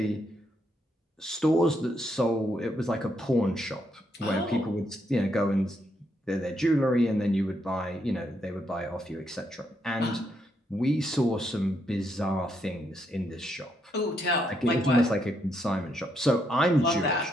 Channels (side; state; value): both; normal; correlation 0.77